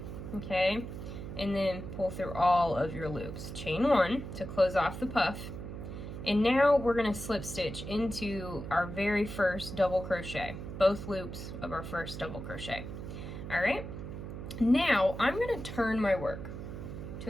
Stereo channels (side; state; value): right; noise; hum, 8 dB below the sound